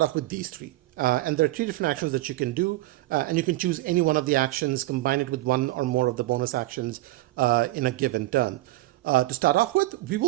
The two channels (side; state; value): left; quieter; 18.2 dB